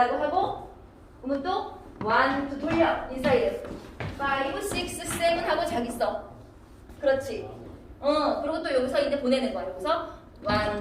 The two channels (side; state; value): both; identical; correlation 1.00